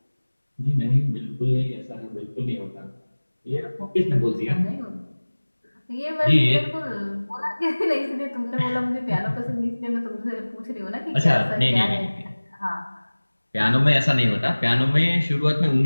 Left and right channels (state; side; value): inverted; both; correlation -1.00